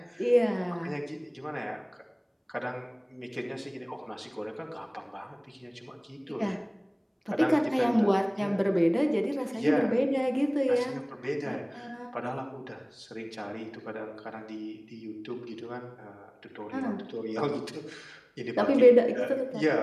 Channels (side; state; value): both; identical; correlation 1.00